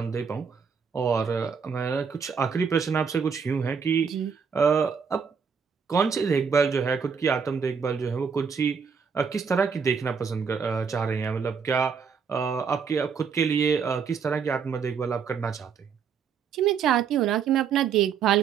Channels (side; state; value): left; quieter; 6.3 dB